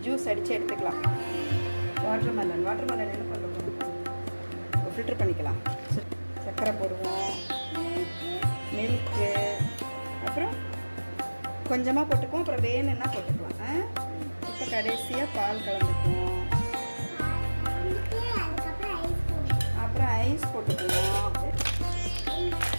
ஜூஸ் அடித்து எடுத்துக்கலாம். வாட்டர் மெலன் என்ன பண்ணுறோம்? ஃபில்டர் பண்ணிக்கலாம். சர்க்கரை போடுவோம், மில்க்கு, அப்புறம் கொஞ்சமாக போட்டுக்குவோம், அப்புறம் வேணும்னா போட்டுக்கலாம். இப்போ கடைசியாக பால் கலந்துக்குவோம், அப்புறம் ஐஸ் போட்டுக்குவோம்.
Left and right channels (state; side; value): inverted; both; correlation -1.00